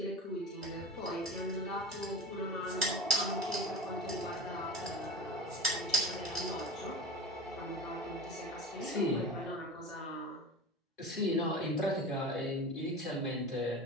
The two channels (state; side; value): normal; both; correlation 0.32